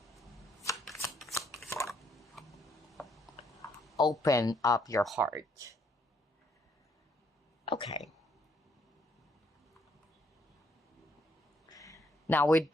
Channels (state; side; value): normal; both; correlation 0.69